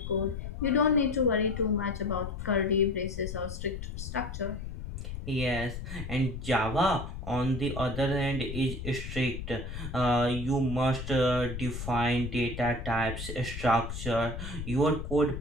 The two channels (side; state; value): left; noise; rumble, 7 dB below the sound